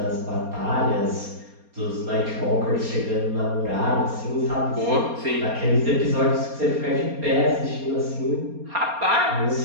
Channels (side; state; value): left; late; 4.3 ms